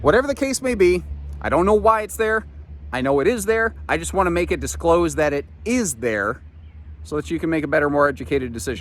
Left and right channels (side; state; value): both; identical; correlation 1.00